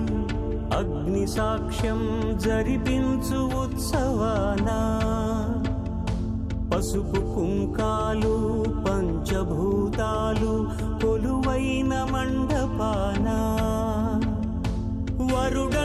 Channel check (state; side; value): identical; both; correlation 1.00